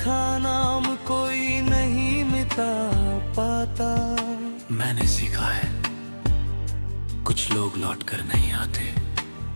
नाम कोई नहीं मिटा पाता। मैंने सीखा है कुछ लोग लौट कर नहीं आते,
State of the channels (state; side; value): inverted; both; correlation -1.00